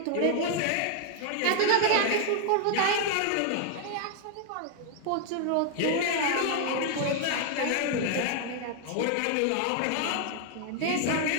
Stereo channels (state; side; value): different; both; correlation 0.00